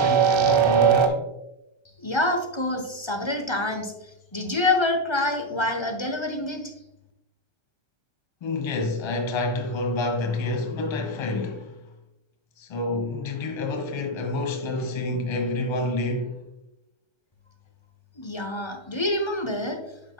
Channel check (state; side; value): late; right; 1.3 ms